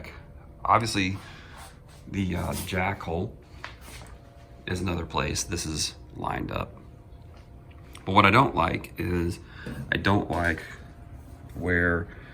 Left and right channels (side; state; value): both; identical; correlation 1.00